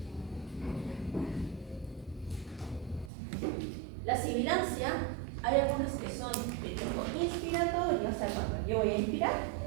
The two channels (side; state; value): left; drops out; at 3.1 s